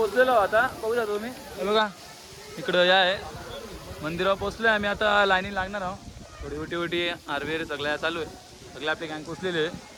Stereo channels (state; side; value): identical; both; correlation 1.00